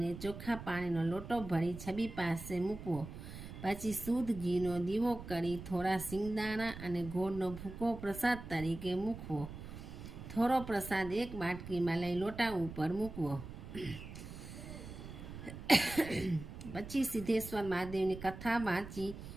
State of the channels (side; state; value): right; noise; rumble, 11 dB below the sound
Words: ચોખ્ખા પાણીનો લોટો ભરી છબી પાસે મૂકવો. પછી શુદ્ધ ઘીનો દીવો કરી થોડા સિંગદાણા અને ગોળનો ભૂકો પ્રસાદ તરીકે મૂકવો. થોડો પ્રસાદ એક બાટકીમાં લઈ લોટા ઉપર મૂકવો. પછી સિદ્ધેશ્વર મહાદેવની કથા વાંચી